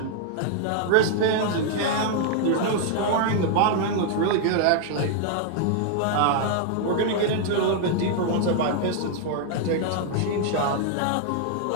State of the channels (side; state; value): both; different; correlation 0.00